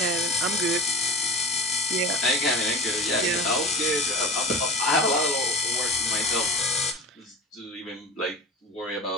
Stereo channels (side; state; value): both; normal; correlation 0.32